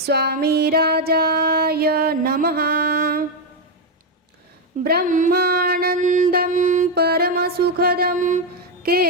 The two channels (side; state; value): both; normal; correlation 0.04